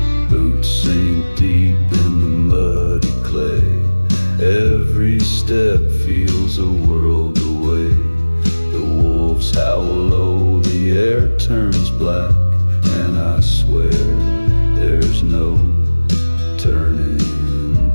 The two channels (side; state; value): both; inverted; correlation -1.00